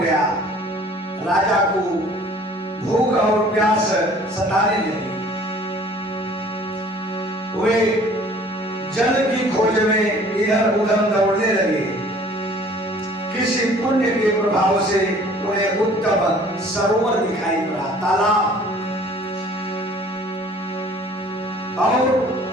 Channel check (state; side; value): normal; both; correlation 0.52